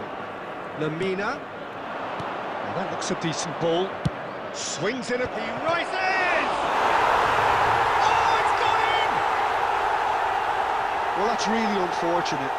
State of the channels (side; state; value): both; identical; correlation 1.00